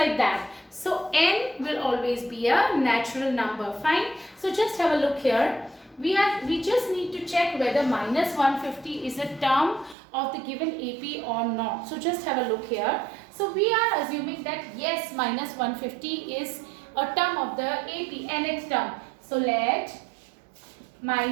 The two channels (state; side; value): drops out; left; at 10.0 s